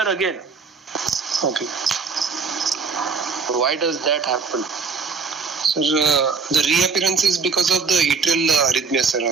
again. Okay. Why does that happen? Sir, the reappearance is because of the atrial arrhythmia, sir,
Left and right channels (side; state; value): left; quieter; 5.1 dB